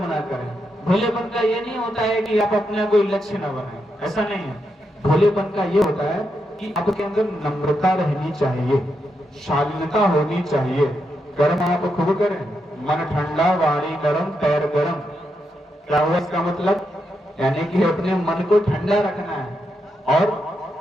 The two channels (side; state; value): both; normal; correlation 0.83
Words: ना करें। भोलेपन का ये नहीं होता है कि आप अपना कोई लक्ष्य न बनाएं, ऐसा नहीं है। भोलेपन का ये होता है कि आपके अंदर नम्रता रहनी चाहिए, शालीनता होनी चाहिए। कर्म आप खूब करें, मन ठंडा वाणी गरम पैर गरम। क्या हुआ इसका मतलब, यानी कि अपने मन को ठंडा रखना है और